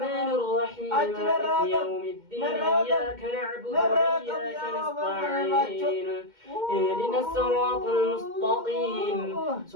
الرحيم مالك يوم الدين إياك نعبد وإياك نستعين اهدنا الصراط المستقيم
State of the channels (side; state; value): left; late; 2.1 ms